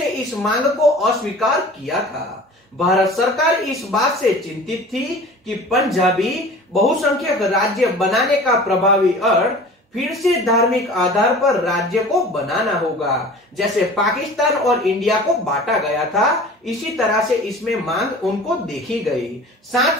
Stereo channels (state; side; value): normal; both; correlation 0.41